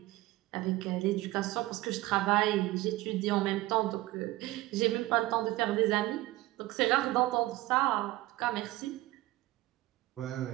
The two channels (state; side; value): quieter; left; 17.9 dB